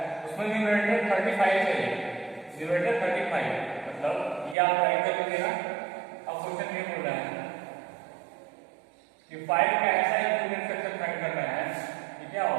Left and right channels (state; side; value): drops out; left; at 4.5 s